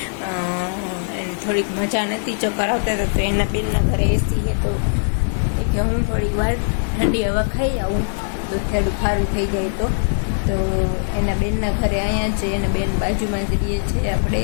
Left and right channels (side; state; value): right; silent; digital silence